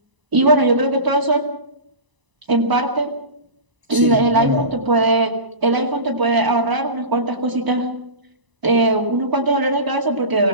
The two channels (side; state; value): left; late; 1.0 ms